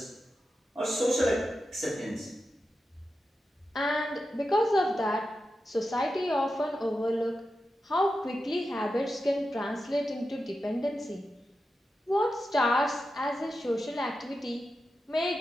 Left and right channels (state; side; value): normal; both; correlation 0.90